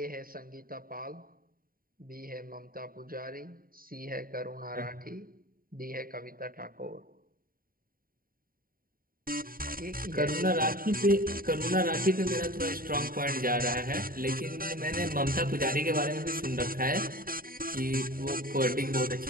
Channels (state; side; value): late; left; 0.42 ms